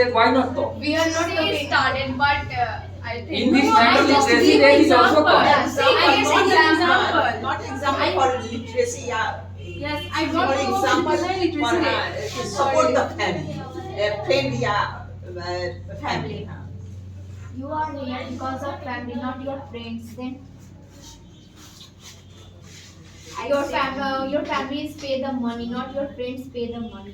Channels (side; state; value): both; identical; correlation 1.00